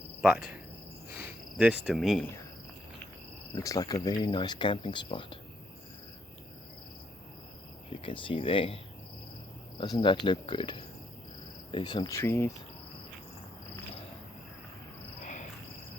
But this to me looks like a very nice camping spot. You can see there. Doesn't that look good? There's some trees.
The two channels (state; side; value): normal; both; correlation 0.75